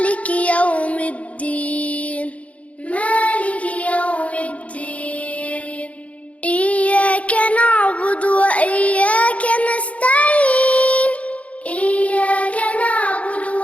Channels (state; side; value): late; right; 0.065 ms